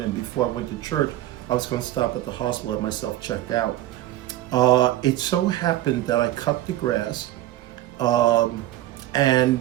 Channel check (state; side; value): quieter; left; 14.5 dB